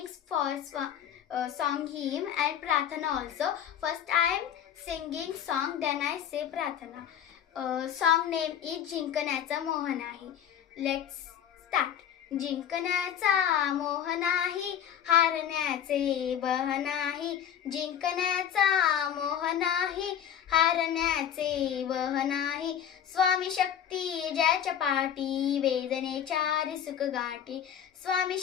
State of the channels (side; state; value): right; quieter; 9.4 dB